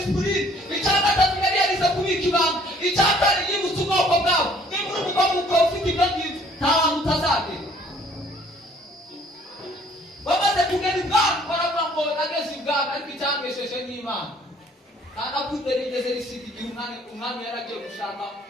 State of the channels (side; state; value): both; normal; correlation 0.59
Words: icya gatatu yari yarize kubika ibanga icya kane yibutse ubwoko bwabo niba uri umugabo ukaba ufite ibyo ngibyo nta hantu utazagera bamaze kugera ibwami baravuga ngo nageze ibwami ariko icyangesheje n'Imana kandi akundera igeze risiga igihe umwami yaragiye gushaka